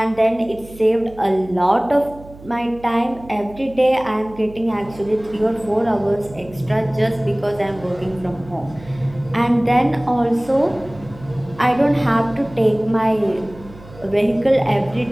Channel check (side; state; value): right; noise; hum, 19 dB below the sound